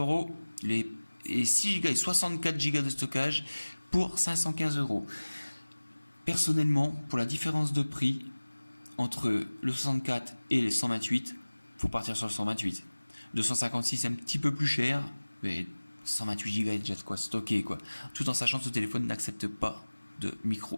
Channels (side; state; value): both; inverted; correlation -1.00